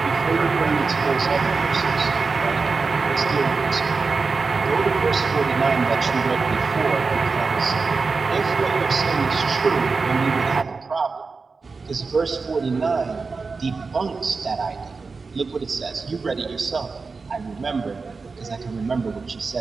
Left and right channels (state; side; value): quieter; left; 4.4 dB